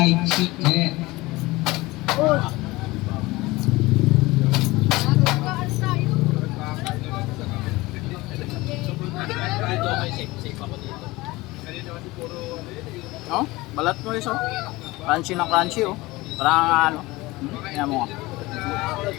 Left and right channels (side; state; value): right; quieter; 20.8 dB